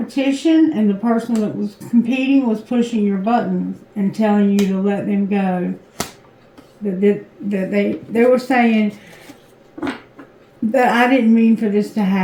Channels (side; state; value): both; identical; correlation 1.00